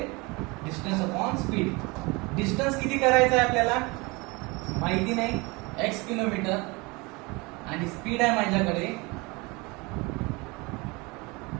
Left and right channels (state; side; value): quieter; left; 25.9 dB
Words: Distance upon speed. डिस्टन्स किती करायचं आहे आपल्याला माहिती नाही, x किलोमीटर, आणि स्पीड आहे माझ्याकडे